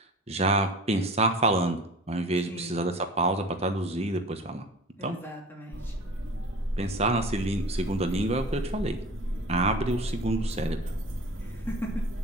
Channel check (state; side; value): normal; both; correlation 0.39